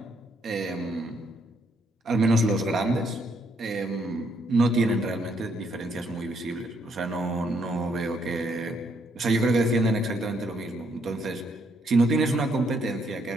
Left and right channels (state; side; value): normal; both; correlation 0.72